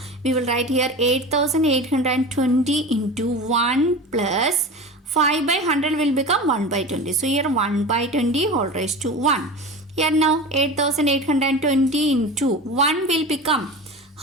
we will write here 8,820 into 1 plus 5 by 100 will become 1 by 20. So here 1 by 20 whole raised to 1. Here now 8,820 into 1 will become,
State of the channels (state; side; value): normal; both; correlation 0.31